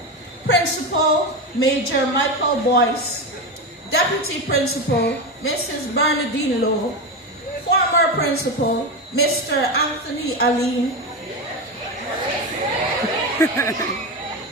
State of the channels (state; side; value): normal; both; correlation 0.16